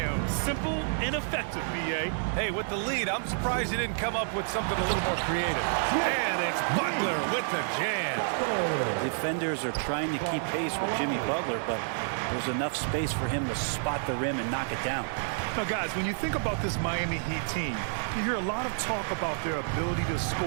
Simple and effective, B.A. Hey, with the lead, I'm surprised he didn't come up with something a little more creative. And it's Butler with the jam. The defenders are trying to keep pace with Jimmy Butler, but there's enough space for him to spot the rim and knock it down. Now, guys, when you think about this Miami Heat team, you hear a lot of talk about their ability to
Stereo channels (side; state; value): left; silent; digital silence